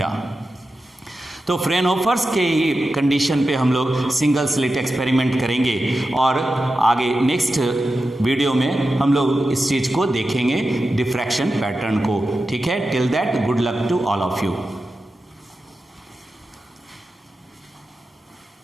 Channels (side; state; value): both; normal; correlation 0.92